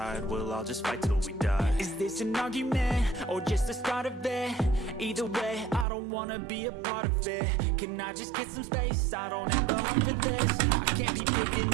we'll all just fight till we die. Is this an argument or just the start of it? Either way, I don't wanna be a part of it. Can I just get some space? I don't have the heart for this. I can't be picking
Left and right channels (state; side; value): drops out; left; at 5.9 s